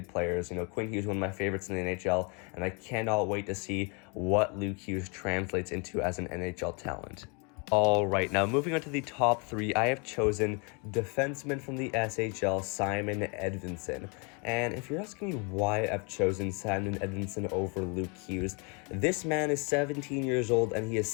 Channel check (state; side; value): quieter; right; 33.5 dB